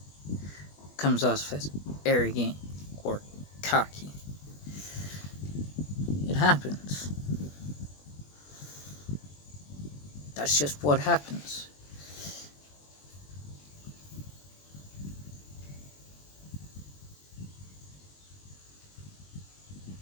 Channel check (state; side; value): late; right; 21 ms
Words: comes off as arrogant or cocky. It happens. That's just what happens.